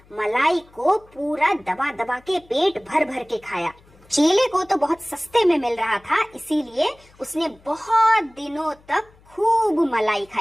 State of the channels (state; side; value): noise; left; hum, 29 dB below the sound